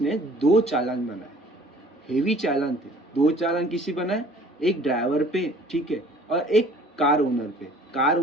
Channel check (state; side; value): normal; both; correlation 0.52